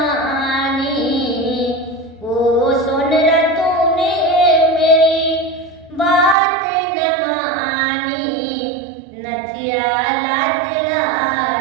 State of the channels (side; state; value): left; drops out; at 6.4 s